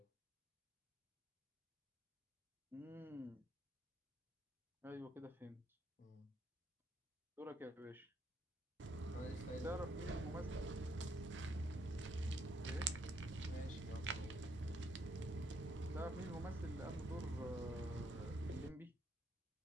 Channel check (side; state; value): both; normal; correlation 0.72